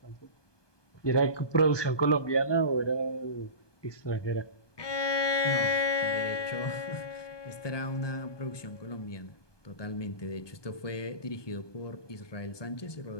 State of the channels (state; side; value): late; right; 1.2 ms